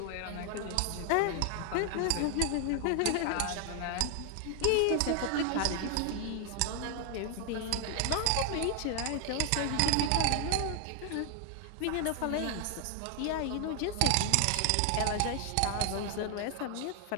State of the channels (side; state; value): both; different; correlation 0.00